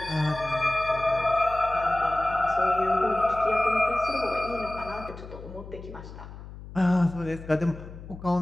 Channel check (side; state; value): left; noise; hum, 14 dB below the sound